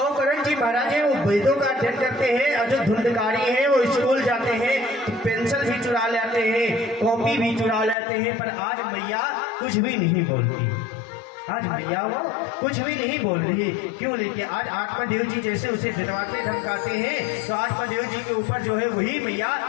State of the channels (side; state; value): right; drops out; at 8.0 s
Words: जी महाराज है वो वेदों का अध्ययन करते हैं, और जो धुंधकारी है वो स्कूल जाते हैं तो पेंसिल भी चुरा लेते हैं, कॉपी भी चुरा लेते हैं। पर आज मैया कुछ भी नहीं बोलती, आज मैया वो कुछ भी नहीं बोल रही। क्यों? लेके आज आत्मदेव जी जैसे उसे डरवाते धमकाते हैं तो आत्मदेव जी के ऊपर जो है वही मैया